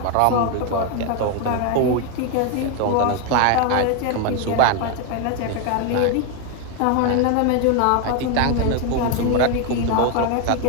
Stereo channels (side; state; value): both; different; correlation 0.01